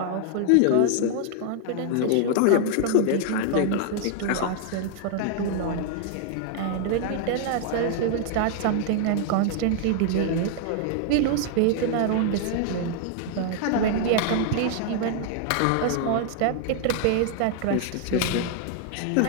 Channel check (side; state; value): both; different; correlation 0.00